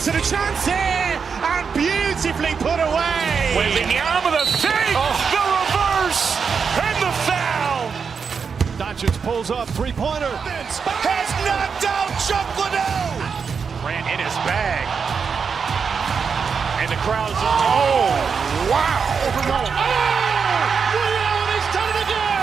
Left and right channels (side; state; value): left; quieter; 5.9 dB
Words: and a chance here, and beautifully put away. Wembanyama with a save, the reverse, and the foul. Doncic pulls up, three-pointer. Has knocked out Chuck Liddell. Grant in his bag. And the crowd's oh, wow. He's done it